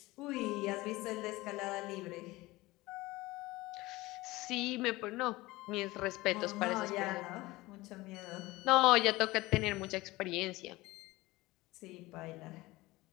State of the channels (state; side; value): quieter; right; 20.0 dB